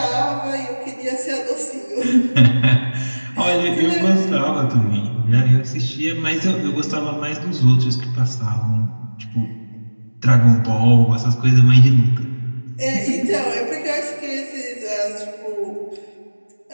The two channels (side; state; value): both; inverted; correlation -1.00